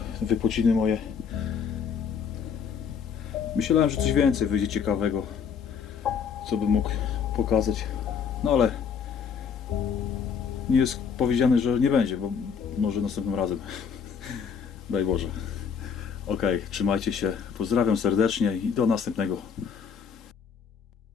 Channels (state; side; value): quieter; right; 6.7 dB